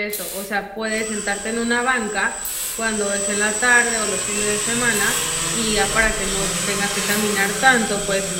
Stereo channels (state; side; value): identical; both; correlation 1.00